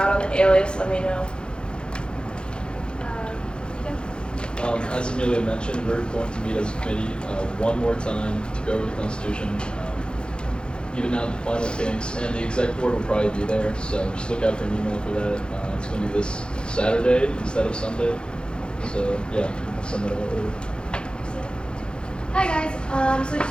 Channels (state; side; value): late; right; 0.051 ms